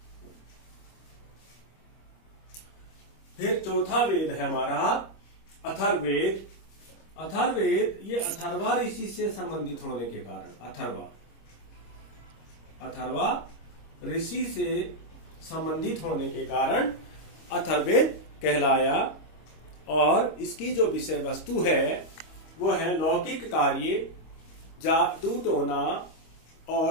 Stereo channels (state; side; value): late; right; 25 ms